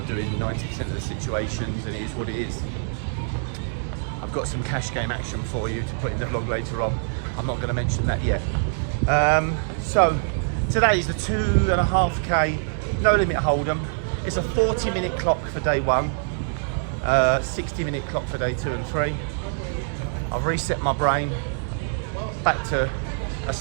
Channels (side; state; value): left; silent; 62 dB below the other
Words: to do in 90% of the situations, and it is what it is. I've got some cash game action for you to put in the vlog later on. I'm not going to mention that yet. So today's the 2.5k no limit hold'em. It's a 40-minute clock for day one, 60-minute clock for day 2 and 3. I've reset my brain back to a